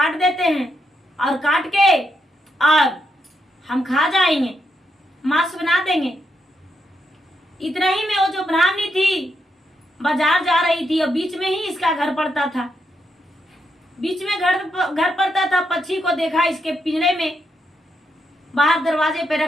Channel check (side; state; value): both; normal; correlation 0.80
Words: देते हैं और काट के और हम खा जाएंगे, मांस बना देंगे। इतना ही में वो जो ब्राह्मणी थी बाजार जा रही थी और बीच में ही इसका घर पड़ता था। बीच में घर पड़ता था। पक्षी को देखा इसके पिंजरे में बाहर दरवाजे पे